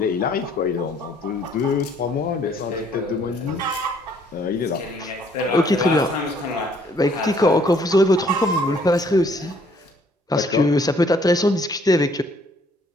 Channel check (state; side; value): normal; both; correlation 0.63